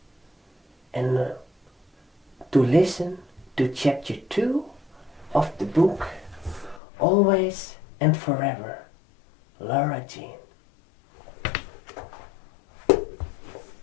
and to listen to chapter 2 of the book Always and Forever, Laura Jean.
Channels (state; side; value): drops out; right; at 6.8 s